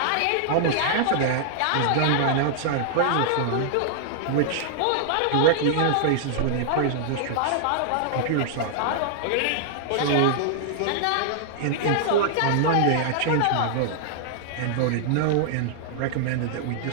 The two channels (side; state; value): both; different; correlation -0.01